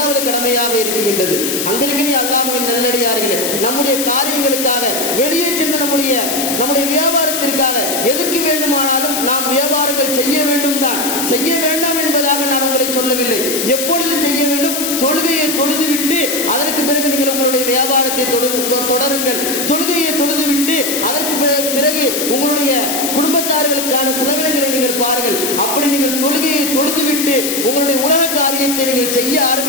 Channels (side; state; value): left; noise; hiss, 2 dB below the sound